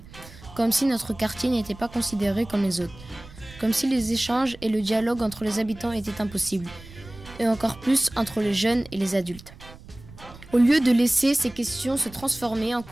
Comme si notre quartier n'était pas considéré comme les autres. Comme si les échanges et le dialogue entre les habitants étaient impossibles. Et encore plus entre les jeunes et les adultes. Au lieu de laisser ces questions se transformer en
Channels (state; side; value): noise; right; rumble, 19 dB below the sound